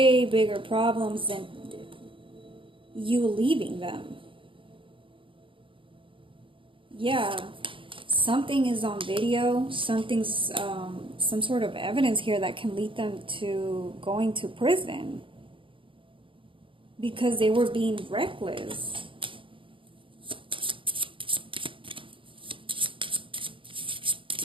bigger problems than you leaving them. Yeah, something is on video. Something's, some sort of evidence here that can lead them to going to prison. Because they were being reckless.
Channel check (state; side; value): late; left; 0.25 ms